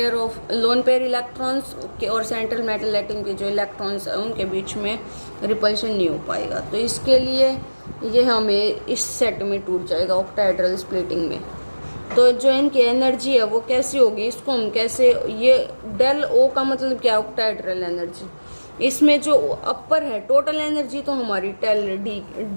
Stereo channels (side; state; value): both; inverted; correlation -1.00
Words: पेयर इलेक्ट्रॉन्स और सेंट्रल मेटल एटम के जो इलेक्ट्रॉन्स हैं उनके बीच में रिपल्शन नहीं हो पाएगा। तो इसके लिए ये हमें इस सेट में टूट जाएगा ऑक्टाहेड्रल स्प्लिटिंग में। तो जो इनकी एनर्जी है वो कैसी होगी, इसको हम कैसे, ये डेल ओ का मतलब क्या, ऑक्टाहेड्रल एनर्जी। इसमें जो अपर है टोटल एनर्जी तो हमारी